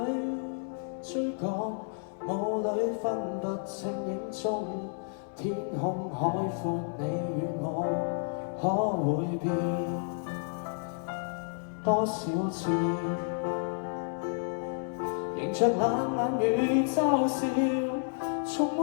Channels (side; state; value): right; silent; 57 dB below the other